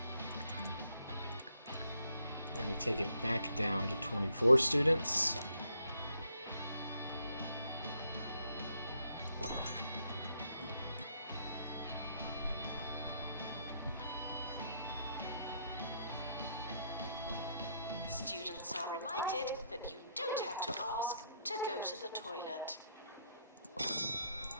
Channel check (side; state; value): both; inverted; correlation -0.73